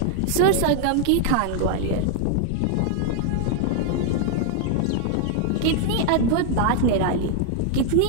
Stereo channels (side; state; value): both; different; correlation 0.00